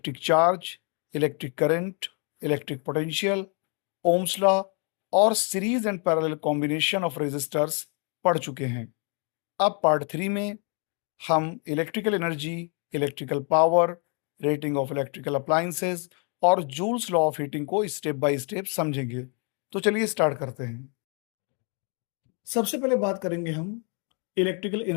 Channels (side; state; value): right; quieter; 38.2 dB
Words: charge, electric current, electric potential, ohm's law और series and parallel combination of resistors पढ़ चुके हैं। अब पार्ट 3 में हम electrical energy, electrical power, rating of electrical appliances और जूल्स लॉ ऑफ हीटिंग को स्टेप बाय स्टेप समझेंगे। तो चलिए स्टार्ट करते हैं। सबसे पहले बात करेंगे हम इलेक्ट्रिकल